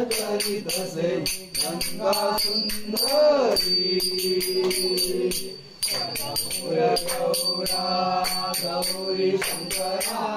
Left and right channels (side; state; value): both; identical; correlation 1.00